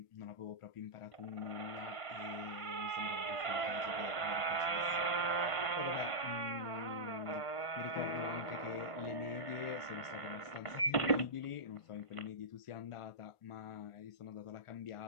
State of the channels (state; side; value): late; right; 1.4 ms